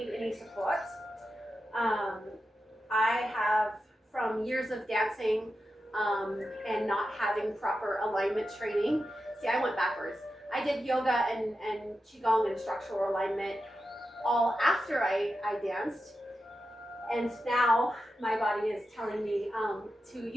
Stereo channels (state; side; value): normal; both; correlation 0.90